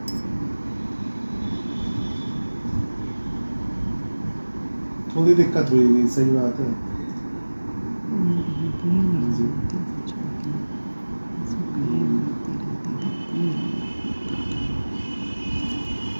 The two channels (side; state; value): both; inverted; correlation -1.00